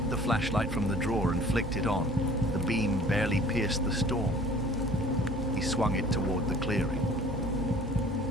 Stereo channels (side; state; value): both; normal; correlation 0.49